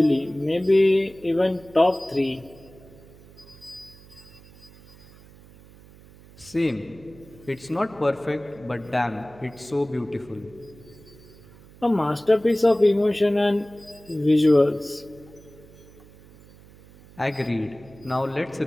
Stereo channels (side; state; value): right; noise; hum, 23 dB below the sound